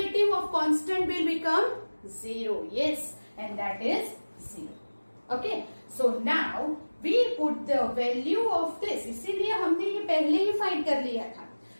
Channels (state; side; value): inverted; both; correlation -1.00